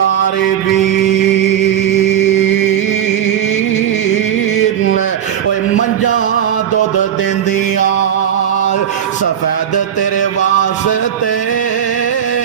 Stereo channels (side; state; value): left; quieter; 9.5 dB